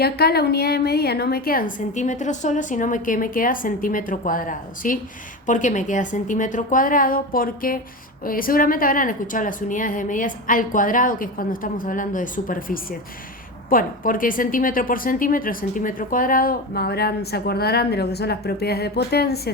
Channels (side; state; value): both; normal; correlation 0.23